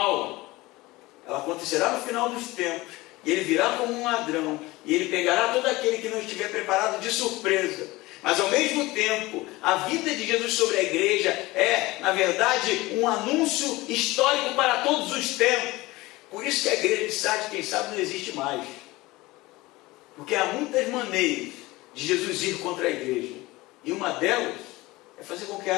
Ela acontecerá no final dos tempos, e ele virá como um ladrão, e ele pegará todo aquele que não estiver preparado de surpresa. Mas ao mesmo tempo, a vida de Jesus sobre a igreja é, na verdade, um anúncio histórico para todos os tempos. Por isso que a igreja de Sardes, quem sabe, não existe mais. Porque há muitas maneiras de Jesus ir contra a igreja. E uma delas é fazer com que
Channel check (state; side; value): quieter; right; 20.3 dB